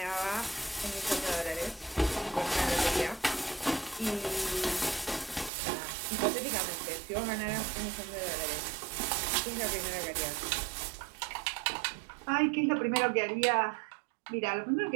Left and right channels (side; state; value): left; drops out; at 5.5 s